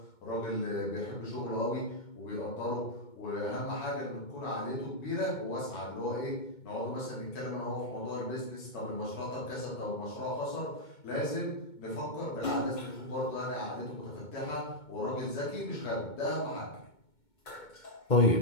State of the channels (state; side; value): late; right; 2.2 ms